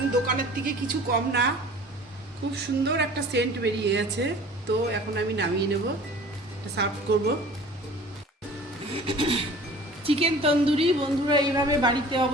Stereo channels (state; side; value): normal; both; correlation 0.45